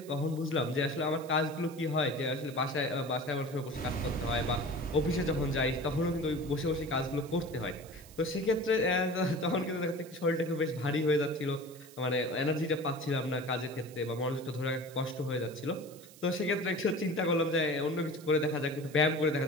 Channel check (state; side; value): noise; right; hiss, 21 dB below the sound